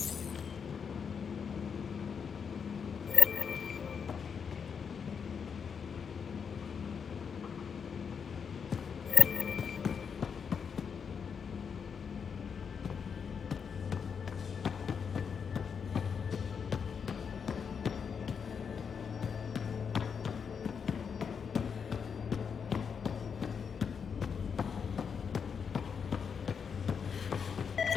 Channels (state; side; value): quieter; right; 6.5 dB